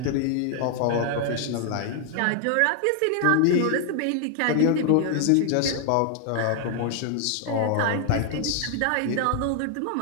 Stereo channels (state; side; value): different; both; correlation 0.00